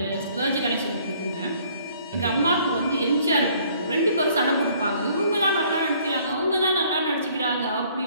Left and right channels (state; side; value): inverted; both; correlation -0.60